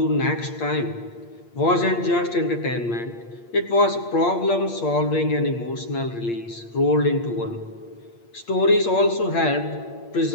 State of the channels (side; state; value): right; late; 8.6 ms